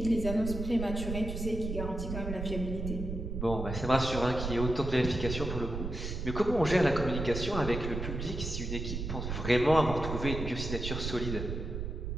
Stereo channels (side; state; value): right; noise; rumble, 5 dB below the sound